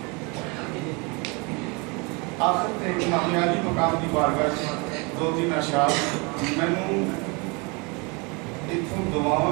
آخر تے امام علی مقام کی بارگاہ سے دو تین اشعار مینوں اتوں دعاواں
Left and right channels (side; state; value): left; quieter; 29.6 dB